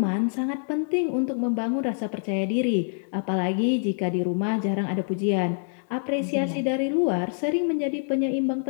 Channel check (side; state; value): right; silent; digital silence